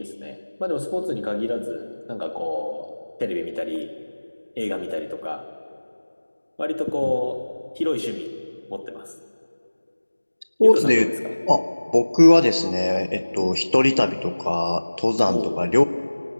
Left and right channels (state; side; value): inverted; both; correlation -1.00